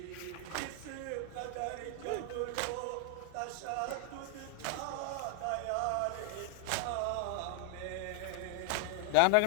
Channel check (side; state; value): both; different; correlation 0.00